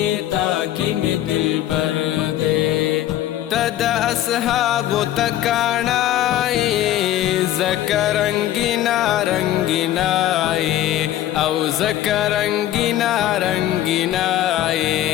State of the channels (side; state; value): right; quieter; 12.9 dB